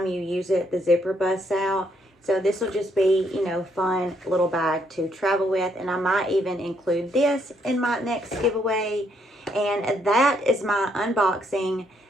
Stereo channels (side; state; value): both; normal; correlation 0.72